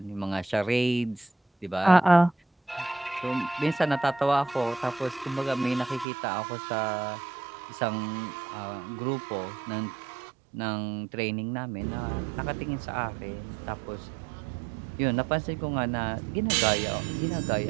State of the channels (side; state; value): left; drops out; at 6.1 s